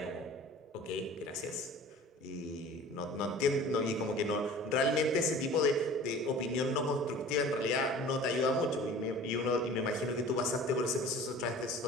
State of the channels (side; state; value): both; normal; correlation 0.43